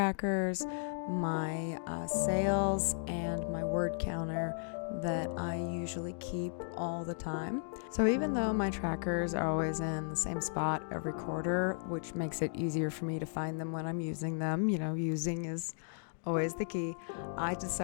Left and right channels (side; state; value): right; silent; digital silence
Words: my sales, and my word counter that I usually keep all the time. So even though my trackers are always in the same spot every quarter, which makes it easier for me to find them when I'm using them, using is always the key, I